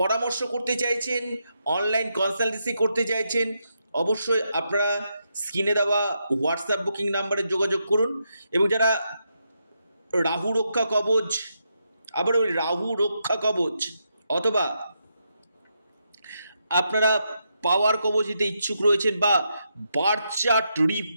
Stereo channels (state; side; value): inverted; both; correlation -0.82